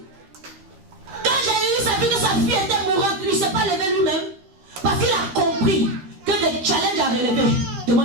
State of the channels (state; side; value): late; left; 12 ms